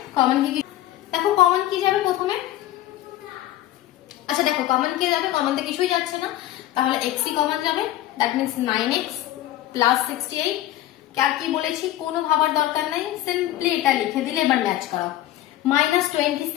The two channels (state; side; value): quieter; right; 14.0 dB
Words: কমন কি? দেখো কমন কি যাবে প্রথমে? আচ্ছা দেখো কমন কি যাবে? কমন তো কিছুই যাচ্ছে না, তাহলে x ই কমন যাবে। That means 9x plus 68। আর কি বলেছি? কোনো ভাবার দরকার নাই, সিম্পলি এটা লিখে দিলে এবার ম্যাচ করা।